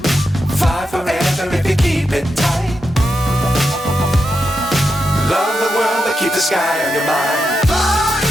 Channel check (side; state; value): both; normal; correlation 0.86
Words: Fly forever if you keep it tight. Love the world but keep the sky on your mind.